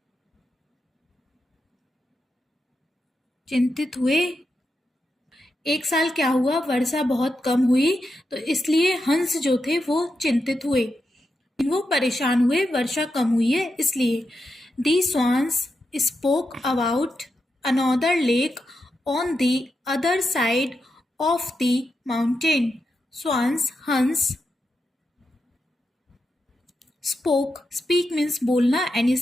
चिंतित हुए। एक साल क्या हुआ? वर्षा बहुत कम हुई तो इसलिए हंस जो थे वो चिंतित हुए, वो परेशान हुए, वर्षा कम हुई है इसलिए। The swans spoke about another lake on the other side of the mountain. Swans हंस। स्पोक, स्पीक मीन्स बोलना एंड ये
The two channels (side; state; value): both; normal; correlation 0.86